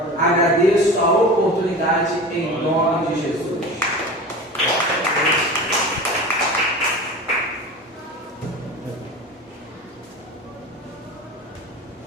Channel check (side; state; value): both; normal; correlation 0.33